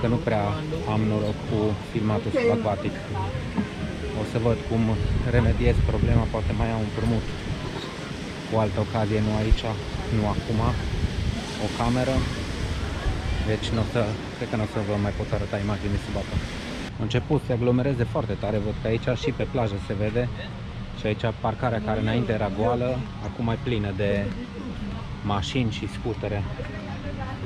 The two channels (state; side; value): identical; both; correlation 1.00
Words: nu prea am noroc cu filmatul subacvatic. O să văd cum remediez problema, poate mai iau un împrumut cu altă ocazie, nu aici, nu acum, o cameră. Deci cred că nu o să vă mai pot arăta imagini sub apă. A început să se aglomereze foarte tare, văd că aici și pe plajă se vede. Și aici parcarea care înainte era goală, acum e plină de mașini și scutere.